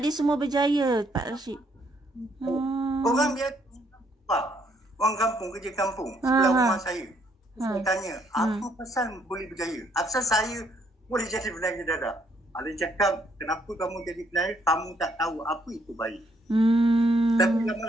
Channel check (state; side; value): normal; both; correlation 0.69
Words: dia semua berjaya, Pak Rashid. Orang biasa. Orang kampung, kerja kampung. Sebelah rumah saya. Saya tanya, apa pasal boleh berjaya? Asal saya boleh jadi penangis dadah? Ada cakap, kenapa kamu jadi penari, kamu tak tahu apa itu baik. Tapi